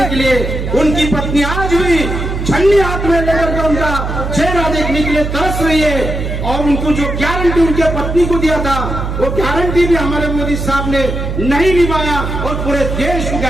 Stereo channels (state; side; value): noise; right; hum, 4 dB below the sound